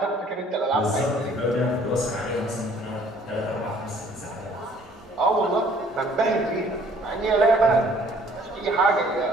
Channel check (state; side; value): normal; both; correlation 0.58